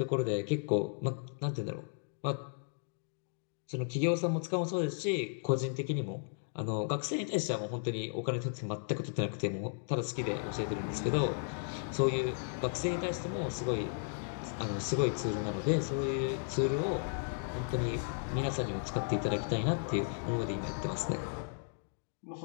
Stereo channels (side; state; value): right; silent; digital silence